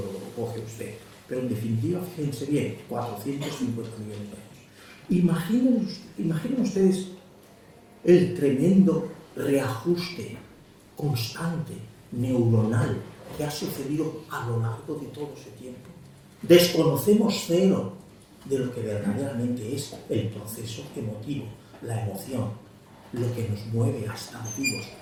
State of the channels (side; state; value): both; identical; correlation 1.00